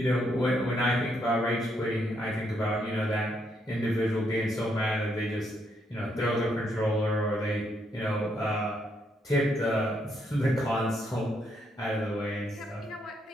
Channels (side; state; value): both; normal; correlation 0.76